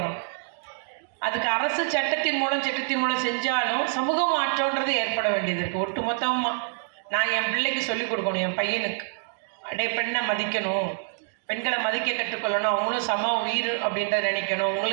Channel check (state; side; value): silent; left; digital silence